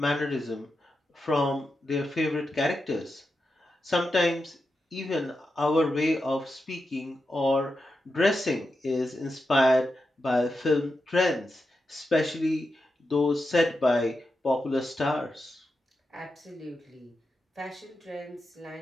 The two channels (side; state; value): both; normal; correlation 0.88